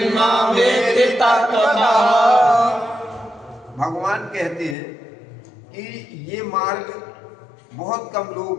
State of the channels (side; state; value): right; drops out; at 4.8 s